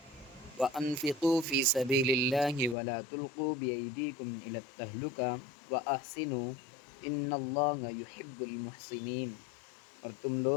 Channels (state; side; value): drops out; right; at 2.8 s